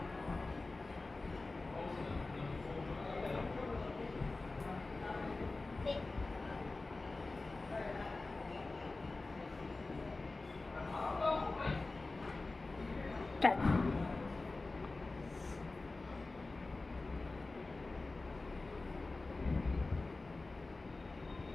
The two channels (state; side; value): quieter; right; 3.3 dB